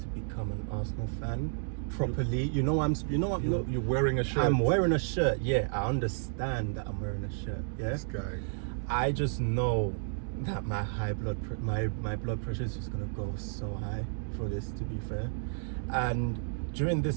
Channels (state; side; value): silent; left; digital silence